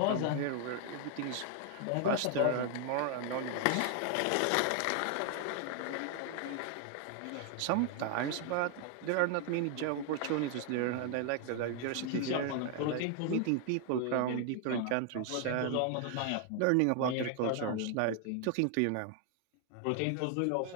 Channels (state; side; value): different; both; correlation 0.00